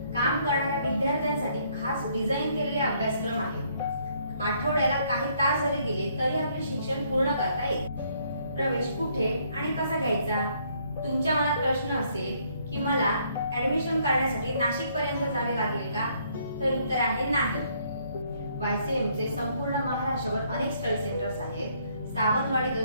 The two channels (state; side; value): inverted; both; correlation -0.67